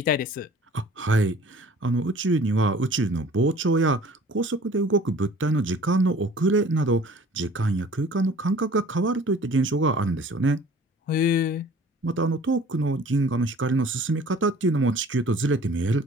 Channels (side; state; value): both; normal; correlation 0.49